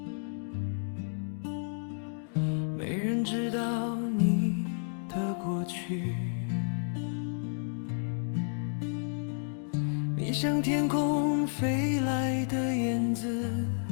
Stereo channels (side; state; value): right; silent; digital silence